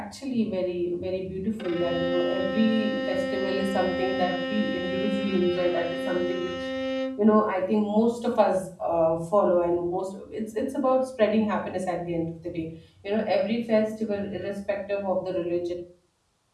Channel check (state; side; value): identical; both; correlation 1.00